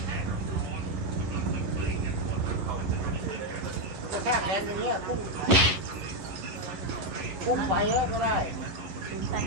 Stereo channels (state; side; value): late; left; 11 ms